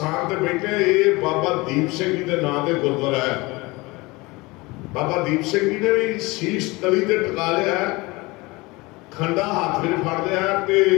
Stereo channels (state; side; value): quieter; right; 23.2 dB